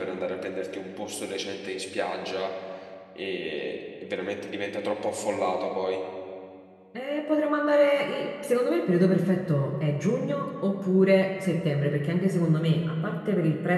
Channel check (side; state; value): both; identical; correlation 1.00